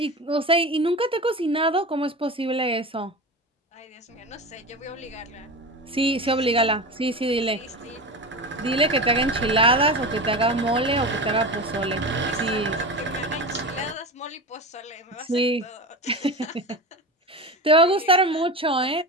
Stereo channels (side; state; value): both; normal; correlation 0.26